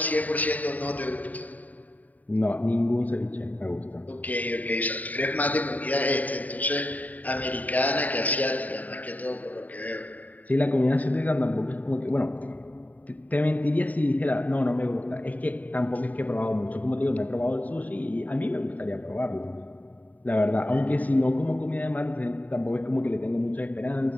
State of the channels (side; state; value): right; late; 0.075 ms